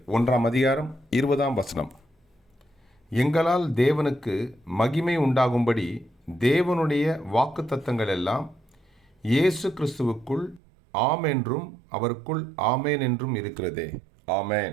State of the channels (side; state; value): left; drops out; at 10.6 s